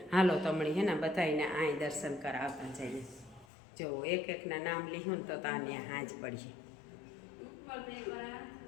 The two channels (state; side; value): drops out; right; at 3.5 s